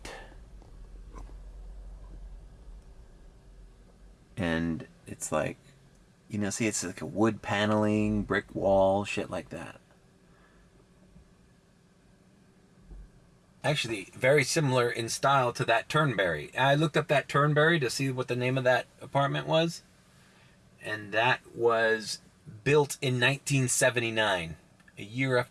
And it's like, you know, see, it's like a wood paneling, brick wall, shit like that. Actually, very similar in style to that Turnberry. I looked up that Turnberry to see what the name of that apartment was. And that was built in 1979, a year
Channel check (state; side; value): identical; both; correlation 1.00